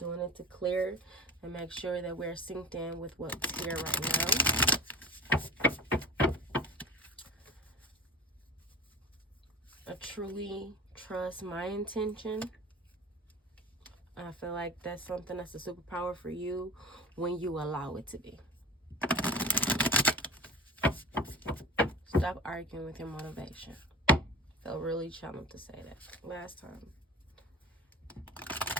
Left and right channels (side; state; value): both; normal; correlation 0.34